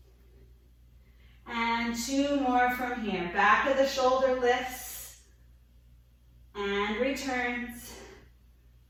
And 2 more from here. Back of the shoulder lifts and returns.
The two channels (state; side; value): identical; both; correlation 1.00